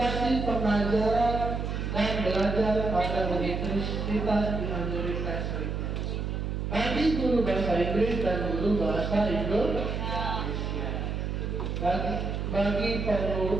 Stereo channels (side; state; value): right; noise; hum, 2 dB below the sound